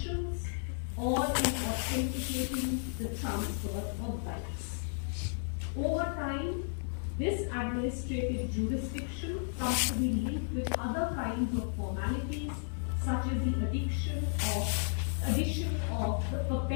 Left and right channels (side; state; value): right; silent; digital silence